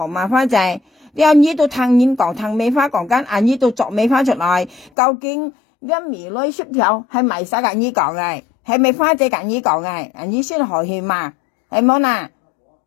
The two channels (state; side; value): drops out; right; at 4.9 s